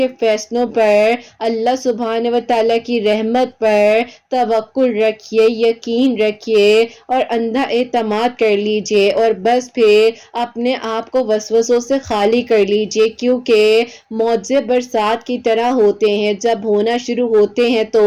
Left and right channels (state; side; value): identical; both; correlation 1.00